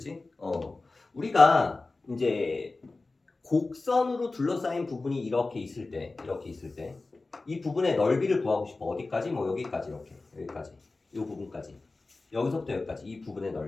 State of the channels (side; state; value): right; quieter; 3.5 dB